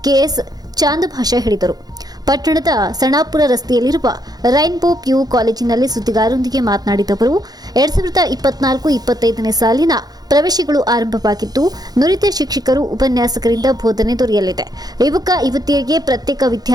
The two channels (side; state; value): left; late; 0.19 ms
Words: ಕೆಎಸ್ ಚಾಂದಭಾಷಾ ಹೇಳಿದರು. ಪಟ್ಟಣದ ಸಣಾಪುರ ರಸ್ತೆಯಲ್ಲಿರುವ ರೈನ್ಬೋ ಪಿಯು ಕಾಲೇಜಿನಲ್ಲಿ ಸುದ್ದಿಗಾರರೊಂದಿಗೆ ಮಾತನಾಡಿದ ಅವರು 2024-25ನೇ ಸಾಲಿನ ಪ್ರವೇಶಗಳು ಆರಂಭವಾಗಿದ್ದು ನುರಿತ ಶಿಕ್ಷಕರು ಉಪನ್ಯಾಸಕರಿಂದ ಬೋಧನೆ ದೊರೆಯಲಿದೆ. ಯುವಕ ಯುವತಿಯರಿಗೆ ಪ್ರತ್ಯೇಕ